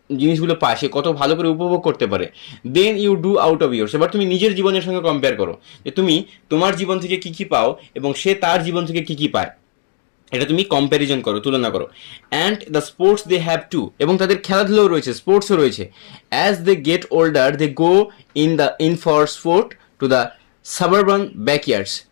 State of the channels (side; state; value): right; silent; digital silence